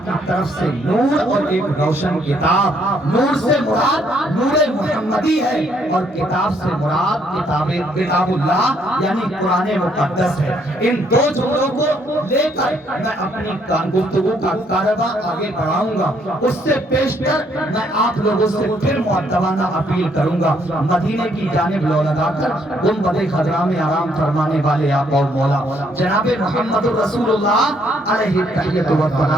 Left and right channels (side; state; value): both; normal; correlation 0.69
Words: کی طرف سے نور اور ایک روشن کتاب۔ نور سے مراد نور محمدی ہے اور کتاب سے مراد کتاب اللہ یعنی قرآن مقدس ہے۔ ان دو جملوں کو لے کر میں اپنی گفتگو کا کارواں آگے بڑھاؤں گا۔ اس سے پیشتر میں آپ لوگوں سے پھر مؤدبانہ اپیل کروں گا، مدینے کی جانب لو لگا کر گنبد خضرا میں آرام فرمانے والے آقا و مولا جناب محمد رسول اللہ علیہ التحیۃ